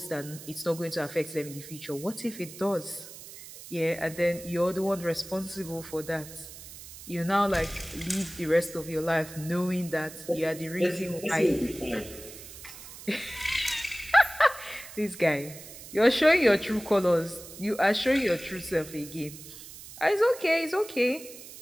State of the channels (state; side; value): noise; right; hiss, 15 dB below the sound